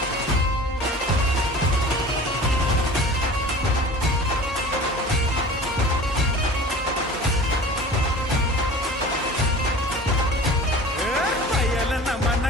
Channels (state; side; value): normal; both; correlation 0.40